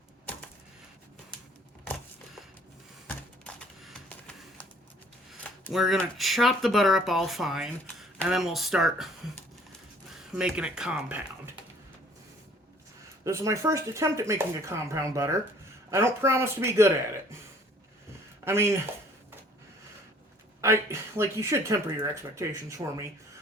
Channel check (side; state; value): both; normal; correlation 0.56